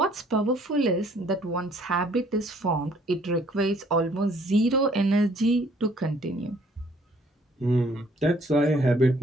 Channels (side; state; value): both; normal; correlation 0.61